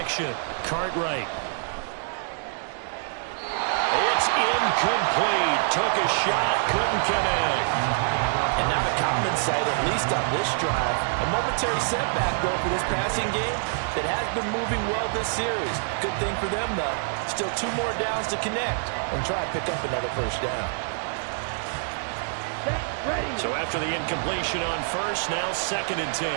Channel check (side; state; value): left; silent; 61 dB below the other